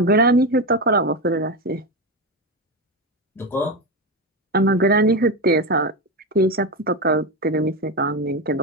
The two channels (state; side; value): normal; both; correlation 0.14